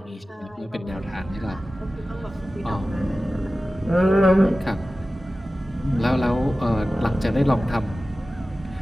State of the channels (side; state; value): both; normal; correlation 0.96